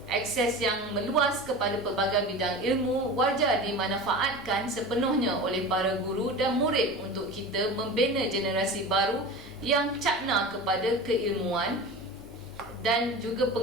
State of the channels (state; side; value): normal; both; correlation 0.32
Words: Akses yang meluas kepada pelbagai bidang ilmu wajar dimanfaatkan sepenuhnya oleh para guru dan murid untuk kita membina generasi baru yang cakna kepada keilmuan dan juga